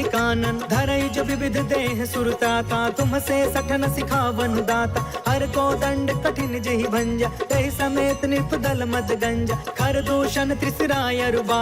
कानन, धरई जो विविध देह सुरताता, तुम से सठन सिखावन दाता, हर को दंड कठिन जहि भंजा, तहि समेत निपदल मद गंजा, खर दूषण त्रिसराय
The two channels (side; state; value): both; identical; correlation 1.00